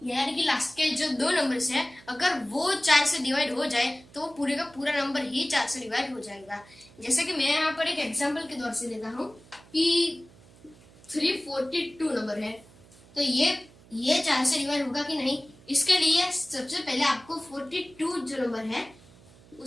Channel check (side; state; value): right; noise; hum, 25 dB below the sound